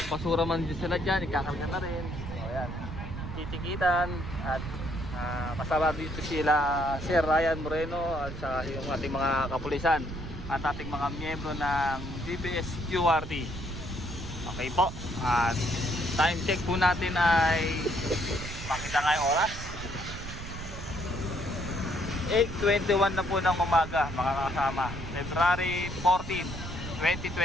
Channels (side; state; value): right; noise; rumble, 9 dB below the sound